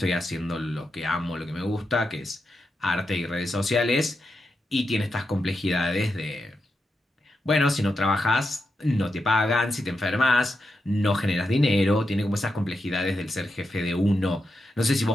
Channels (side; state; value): both; normal; correlation 0.87